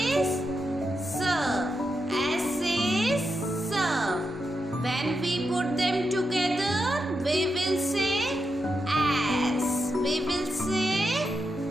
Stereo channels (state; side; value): normal; both; correlation 0.86